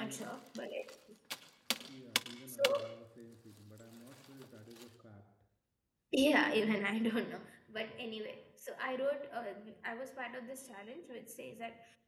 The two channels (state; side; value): identical; both; correlation 1.00